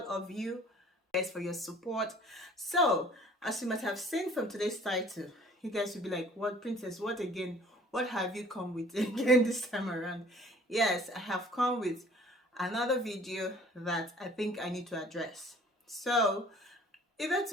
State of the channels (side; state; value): both; normal; correlation 0.52